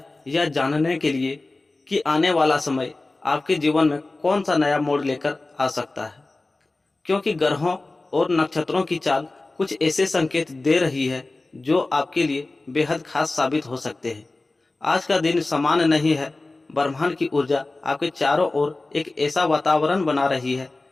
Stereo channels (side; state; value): right; quieter; 3.2 dB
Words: यह जानने के लिए कि आने वाला समय आपके जीवन में कौन सा नया मोड़ लेकर आ सकता है। क्योंकि ग्रहों और नक्षत्रों की चाल कुछ ऐसे संकेत दे रही है जो आपके लिए बेहद खास साबित हो सकते हैं। आज का दिन सामान्य नहीं है। ब्रह्मांड की ऊर्जा आपके चारों ओर एक ऐसा वातावरण बना रही है